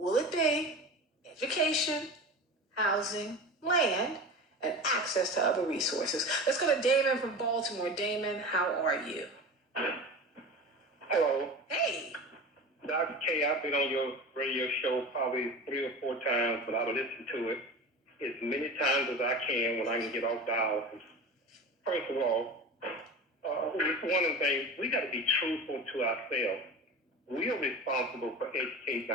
it be education, housing, land, and access to other resources? Let's go to Damon from Baltimore. Damon, how are you? Hello. Hey. Dr. K, I've been on your radio show probably 3 or 4 times, but I've listened to it as many times as I can when I can get off dialysis. First of all, one of the things, we got to be truthful to ourselves. We are responsible for educating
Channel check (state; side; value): normal; both; correlation 0.32